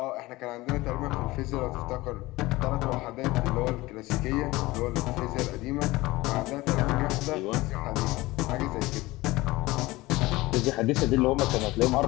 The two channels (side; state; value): right; quieter; 19.9 dB